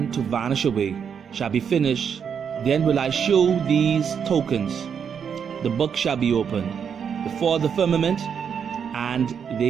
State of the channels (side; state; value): left; quieter; 7.3 dB